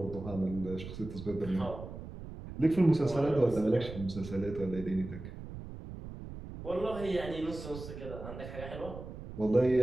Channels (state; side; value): noise; right; rumble, 11 dB below the sound